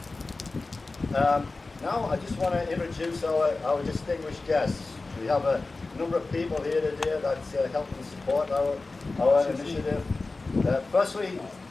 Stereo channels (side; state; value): right; quieter; 3.5 dB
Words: Now I just want to introduce our distinguished guests. We have a number of people here today that's helping support our initiative. Firstly,